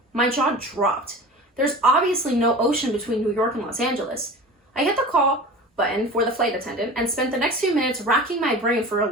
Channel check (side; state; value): both; normal; correlation 0.36